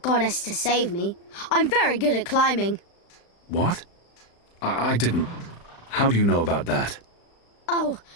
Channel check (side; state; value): right; late; 35 ms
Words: to save me. I'm very good at climbing. What? I didn't... How do you know about that? Oh,